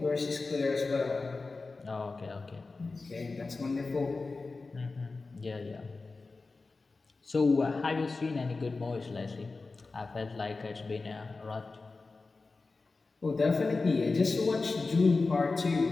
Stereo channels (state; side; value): quieter; right; 3.8 dB